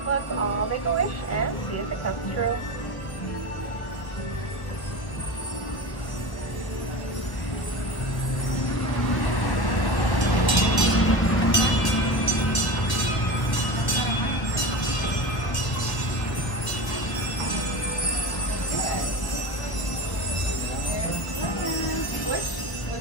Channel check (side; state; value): right; late; 1.1 ms